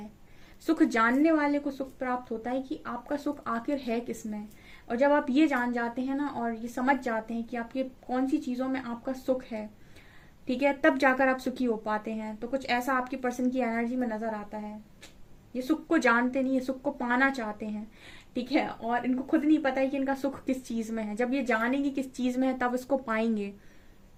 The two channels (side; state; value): both; identical; correlation 1.00